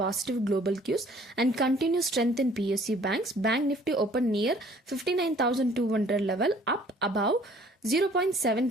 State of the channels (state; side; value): normal; both; correlation 0.56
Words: global cues and continued strength in PSU banks. Bank Nifty opened near 59,200 level, up above